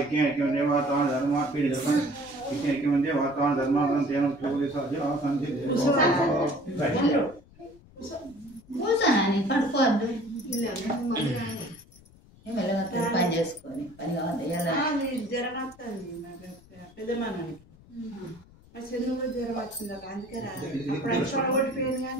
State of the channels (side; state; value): left; noise; rumble, 25 dB below the sound